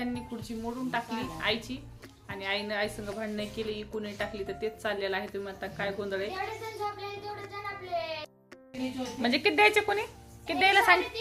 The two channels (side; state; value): both; identical; correlation 1.00